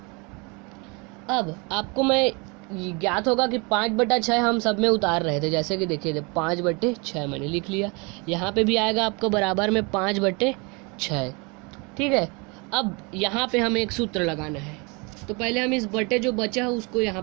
अब आपको मैं ज्ञात होगा कि 5/6 हम सब में उतार रहे थे, जैसे कि देखिए 5/6 मैंने लिख लिया। यहाँ पे भी आएगा आपको बराबर में 5/6। ठीक है, अब यहाँ पे हमें एक सूत्र लगाना है। तो पहले हम इस बटे जो बचा है उसको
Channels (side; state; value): left; quieter; 29.9 dB